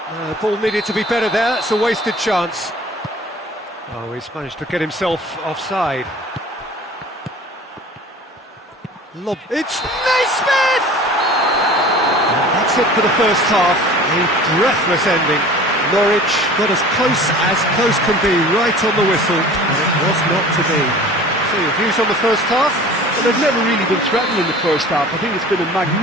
The ball needed to be better there, that's a wasted chance. Oh, he's managed to get himself offside. It's Naismith! And that's it for the first half. A breathless ending. Norwich got as close can be, right on the whistle, and it was not to be. So your views on the first half? Well, they've never really been threatened in the first half. I think it's been a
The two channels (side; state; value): both; normal; correlation 0.43